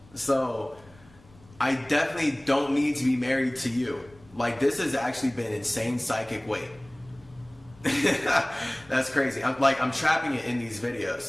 So, I definitely don't need to be married to you. Like, this has actually been insane psychic weight. That's crazy. I'm trapping it in these videos.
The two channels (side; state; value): left; noise; rumble, 25 dB below the sound